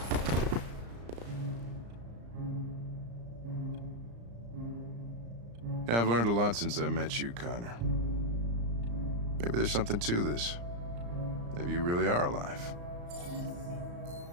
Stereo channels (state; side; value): late; left; 34 ms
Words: Yeah, I've learned a lot since I met you, Connor. Maybe there's something to this. Maybe you really are alive.